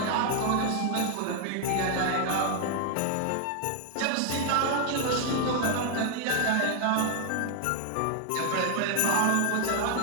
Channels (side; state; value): both; different; correlation 0.00